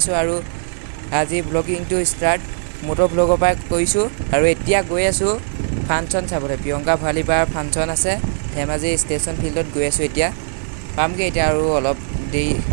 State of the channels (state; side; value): silent; left; 66 dB below the other